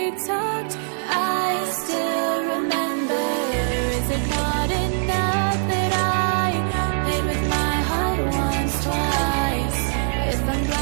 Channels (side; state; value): left; silent; digital silence